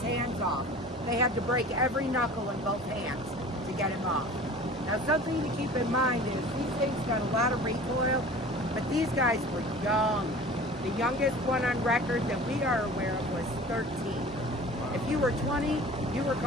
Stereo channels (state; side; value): normal; both; correlation 0.42